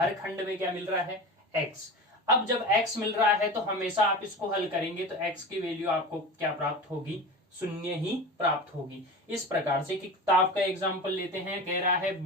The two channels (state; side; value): normal; both; correlation 0.31